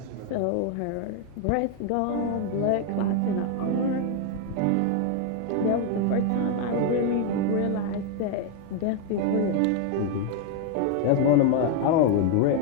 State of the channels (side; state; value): both; different; correlation 0.01